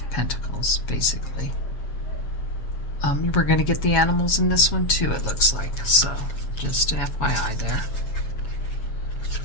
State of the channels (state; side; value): late; right; 7.3 ms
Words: Pentacles, basically. We're going to get the animals in this one too, it looks like. So just an FYI there.